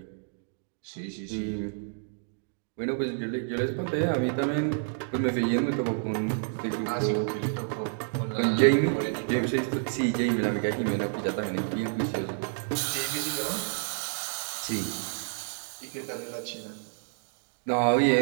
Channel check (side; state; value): left; silent; digital silence